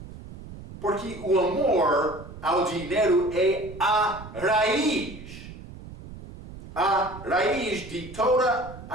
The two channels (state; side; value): noise; right; rumble, 15 dB below the sound